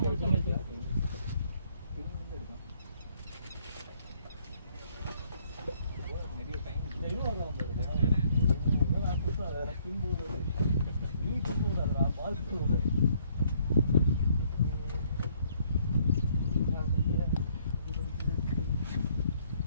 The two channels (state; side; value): inverted; both; correlation -0.66